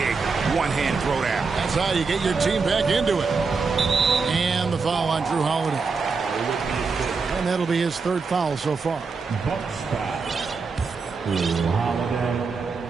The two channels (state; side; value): quieter; left; 4.7 dB